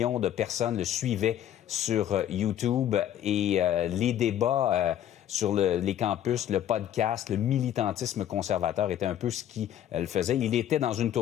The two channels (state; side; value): quieter; right; 11.1 dB